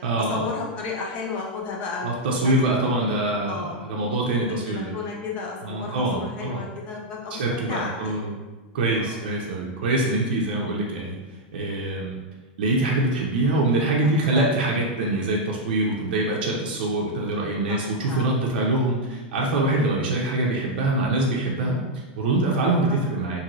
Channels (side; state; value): both; normal; correlation -0.03